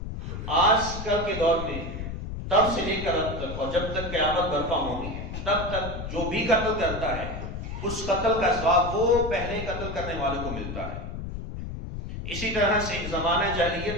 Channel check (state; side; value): noise; left; rumble, 7 dB below the sound